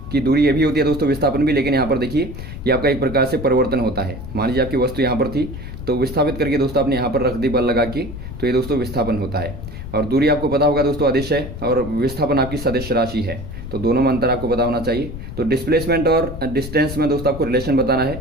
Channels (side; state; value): left; noise; rumble, 9 dB below the sound